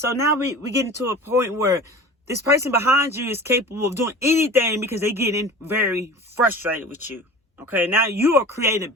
now we getting to a point where this person behind you is capable of doing anything because they getting very frustrated with you. Okay, now you are creating a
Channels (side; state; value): both; normal; correlation 0.38